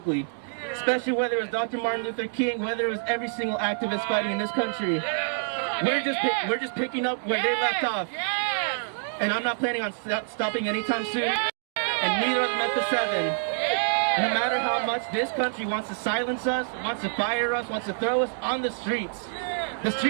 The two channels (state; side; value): silent; left; digital silence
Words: especially whether it was Dr. Martin Luther King, whether it was every single activist fighting in this country. We're just picking up where they left off, and I'm not planning on stopping anytime soon, and neither are the Memphis 7. No matter how much this country wants to silence us, wants to fire us, wants to throw us on the streets